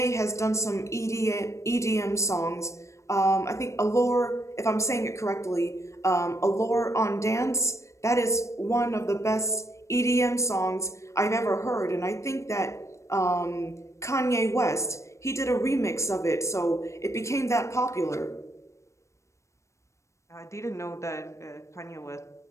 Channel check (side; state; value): right; late; 0.14 ms